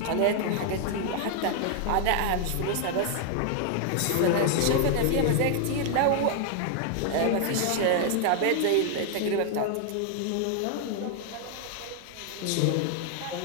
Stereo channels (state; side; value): different; both; correlation 0.00